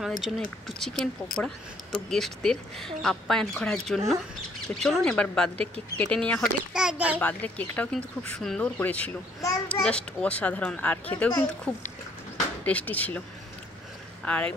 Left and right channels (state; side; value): normal; both; correlation 0.64